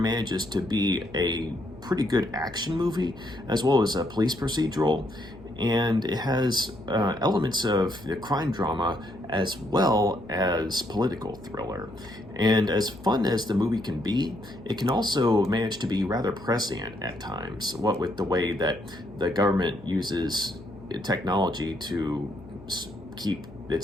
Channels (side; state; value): left; noise; hum, 19 dB below the sound